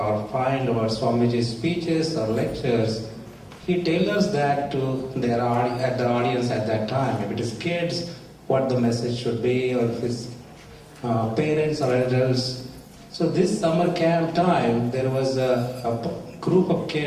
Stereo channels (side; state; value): both; identical; correlation 1.00